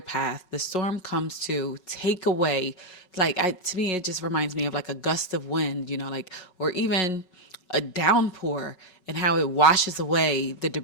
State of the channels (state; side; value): late; right; 5.4 ms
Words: The storm comes to take away, to me, it just reminds me of like a gust of wind, or even a downpour, and how it washes away the